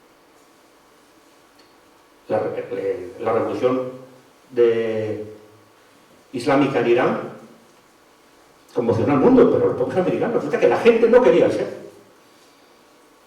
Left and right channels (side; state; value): both; identical; correlation 1.00